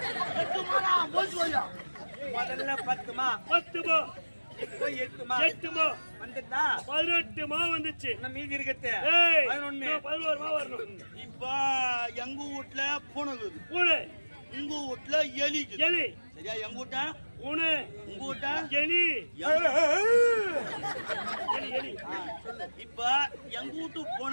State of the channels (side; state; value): both; inverted; correlation -1.00